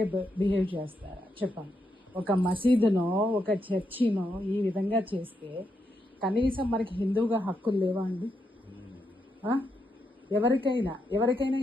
బిహేవ్ చేస్తారా చెప్పండి? ఒక మసీదునో ఒక చర్చినో ఈ విధంగా చేస్తే కనీసం మనకి హిందువుగా హక్కులు లేవా అండి? ఎవరికైనా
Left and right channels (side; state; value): both; normal; correlation 0.82